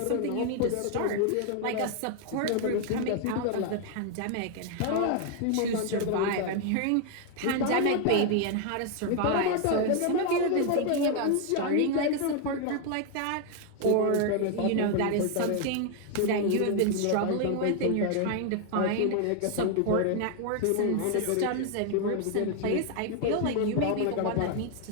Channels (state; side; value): different; both; correlation 0.01